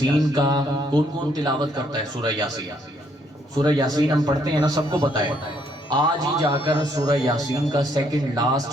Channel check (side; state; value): both; normal; correlation 0.70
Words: کا کون کون تلاوت کرتا ہے؟ سورہ یاسین، سورہ یاسین ہم پڑھتے ہیں نا، سب کو پتہ ہے۔ آج ہی جا کر سورہ یاسین کا سیکنڈ